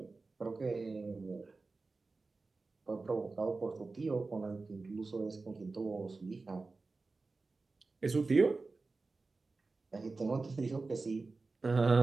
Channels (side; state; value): left; quieter; 3.8 dB